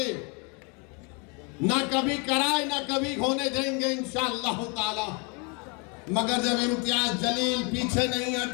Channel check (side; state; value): right; quieter; 33.4 dB